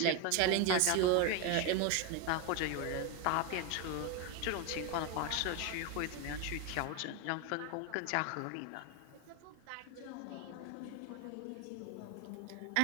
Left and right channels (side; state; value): both; different; correlation 0.02